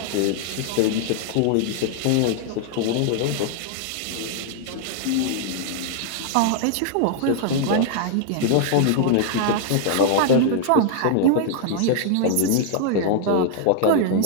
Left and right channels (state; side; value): different; both; correlation 0.00